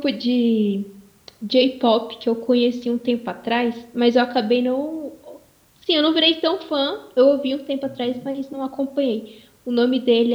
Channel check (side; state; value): both; identical; correlation 1.00